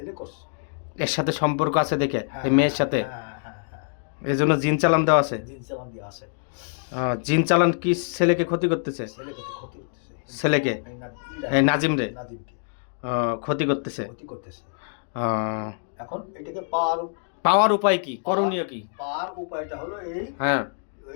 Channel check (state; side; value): silent; right; digital silence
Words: করছে। এর সাথে সম্পর্ক আছে দেখে হ্যাঁ, এই মেয়ের সাথে, হ্যাঁ হ্যাঁ হ্যাঁ, এই জন্য জিন চালান দেওয়া আছে। জিন চালান দিয়ে আছে। জিন চালান কি ছেলেকে ক্ষতি করতেছে? ছেলেকে ক্ষতি করতেছে, ছেলেকে এই নাজিমরে নাজিমকে ক্ষতি করতেছে। ক্ষতি করতেছে। আহ, এখন এটাকে পাওয়ার উপায় কি, করণীয় কি? পাওয়ার উপায়টা হলো এই, হ্যাঁ